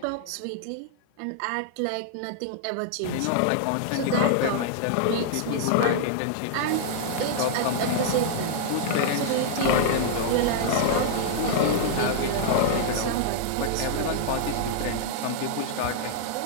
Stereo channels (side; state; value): both; different; correlation -0.01